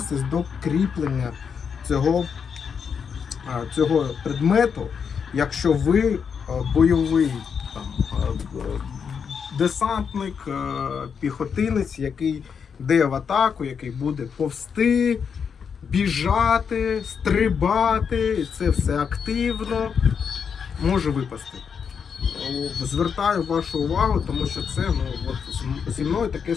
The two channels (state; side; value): quieter; right; 6.6 dB